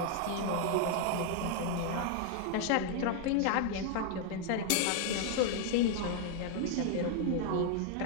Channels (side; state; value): both; different; correlation 0.00